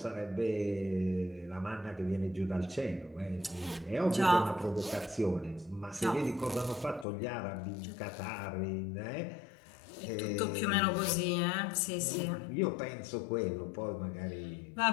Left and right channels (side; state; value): right; drops out; at 7.1 s